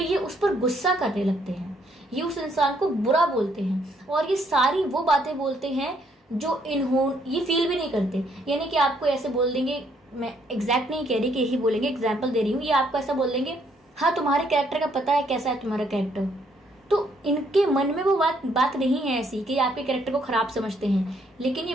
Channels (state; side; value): normal; both; correlation 0.70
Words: उस पर गुस्सा करने लगते हैं, ये उस इंसान को बुरा बोलते हैं, और ये सारी वो बातें बोलते हैं जो ये फील भी नहीं करते। यानी कि आपको ऐसे बोल देंगे, मैं एग्जैक्ट नहीं कह रही कि यही बोलेंगे, एग्जाम्पल दे रही हूँ, ये आपको ऐसा बोल देंगे, हाँ तुम्हारे कैरेक्टर का पता है कैसा है तुम्हारा कैरेक्टर। तो इनके मन में वो बात नहीं है ऐसी कि आपके कैरेक्टर को खराब समझते हैं, लेकिन ये